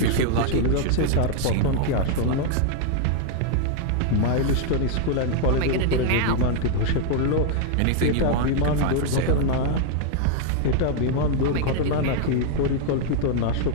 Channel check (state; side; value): different; both; correlation 0.00